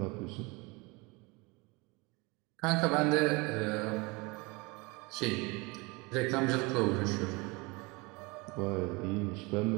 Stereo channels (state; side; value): quieter; left; 26.3 dB